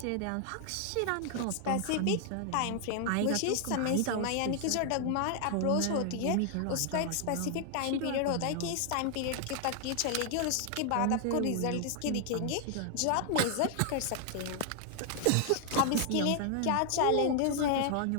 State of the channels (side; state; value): both; different; correlation 0.00